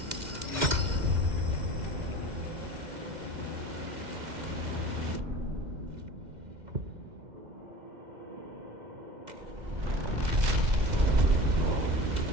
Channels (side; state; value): left; late; 2.0 ms